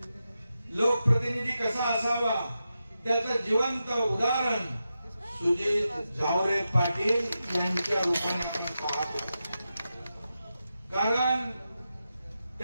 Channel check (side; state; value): both; inverted; correlation -0.89